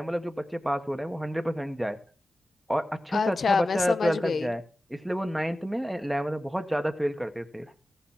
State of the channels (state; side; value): normal; both; correlation 0.94